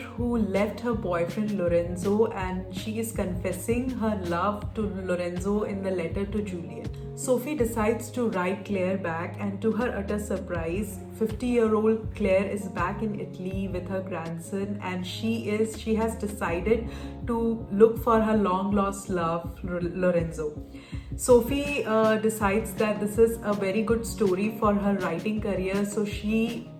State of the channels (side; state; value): both; identical; correlation 1.00